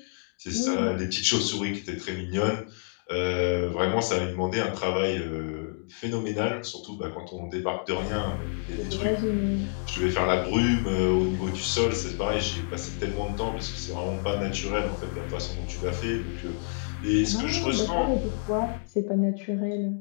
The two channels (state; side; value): silent; right; digital silence